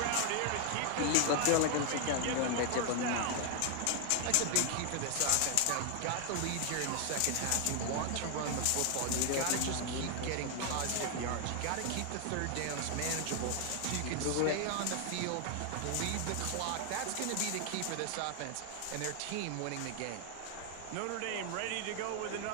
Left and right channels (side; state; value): both; different; correlation 0.00